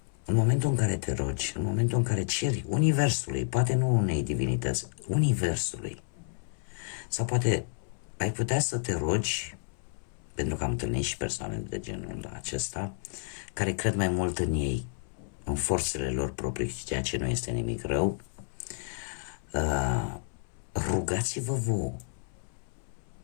în momentul în care te rogi, în momentul în care ceri Universului, poate nu unei divinități, Universului, sau poate ai putea să te rogi, pentru că am întâlnit și persoane de genul acesta, care cred mai mult în ei, în forțele lor proprii, ceea ce nu este nimic rău, rugați-vă vouă.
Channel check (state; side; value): silent; right; 57 dB below the other